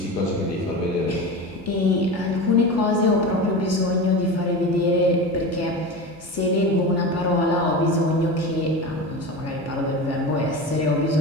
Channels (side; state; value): both; normal; correlation 0.27